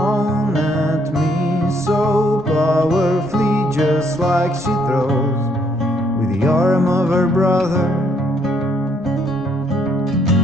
at me so powerfully, just like she throws with the arm of her brother.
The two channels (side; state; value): both; normal; correlation 0.69